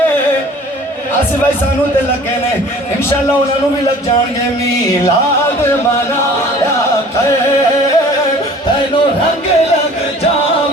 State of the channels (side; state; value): both; normal; correlation 0.48